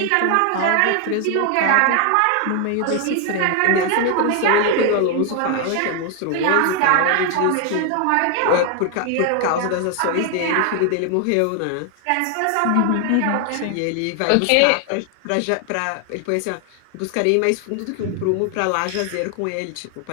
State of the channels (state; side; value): different; both; correlation 0.00